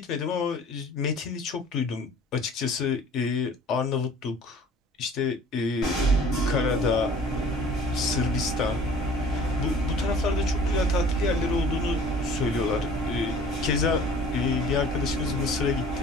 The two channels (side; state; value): both; normal; correlation 0.49